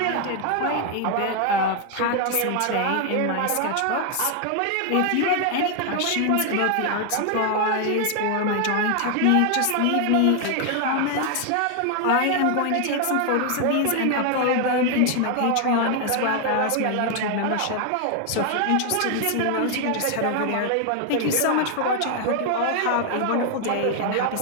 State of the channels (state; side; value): different; both; correlation 0.00